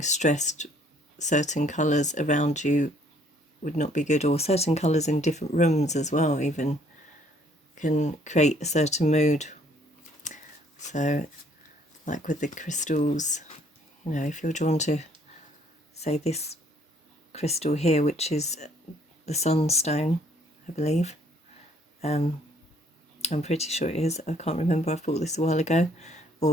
stressed, certain colours around you would not be good, or certain colours in different rooms as well even can create a certain mood. So, like with the crystals, you know, if you're drawn to, say, this crystal here, which is the sunstone, I believe. I'm pretty sure it is. I can't remember. I thought this a while ago.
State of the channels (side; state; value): both; normal; correlation 0.62